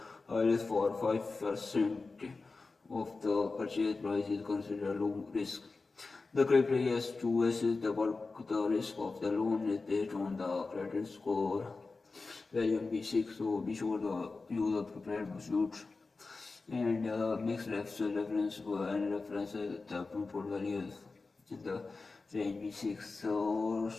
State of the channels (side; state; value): right; quieter; 3.9 dB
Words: risk for 5% of the purchase price is considered low risk. The criteria is to assess the risk of the loan is based on the credit score value in B6. So be sure to use the prepared pursuits and mix reference and references the input values in the range B6